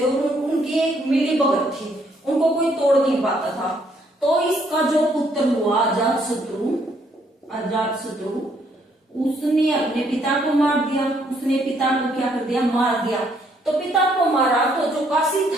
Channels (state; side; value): normal; both; correlation 0.69